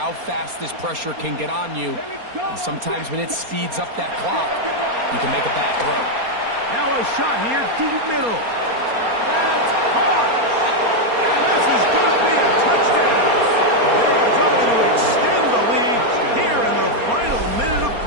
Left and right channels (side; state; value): left; late; 4.3 ms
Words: fast this pressure can get on you. And sometimes when it speeds up that clock, you can make a bad throw. Now a shot here, deep middle. That's hard. And this is going to be a touchdown. They are trying to extend the lead here in the final minute of